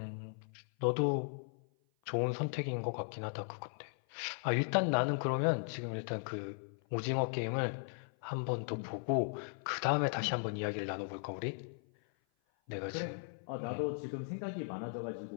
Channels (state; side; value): silent; right; 53 dB below the other